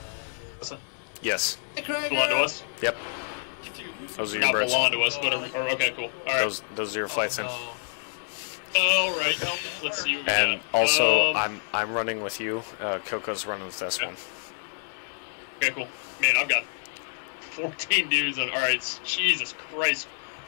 What's that? Yes. Belong to us? Yep. Those are your Not birds. belong to us, but okay, cool. Alright. Those are your flights in. Alright, let's see what we And got. also, I'm running with you. Coco's running with this one. Okay, cool. Man, I've got 14 dudes on. Alright, Jesus Christ.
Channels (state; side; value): silent; right; digital silence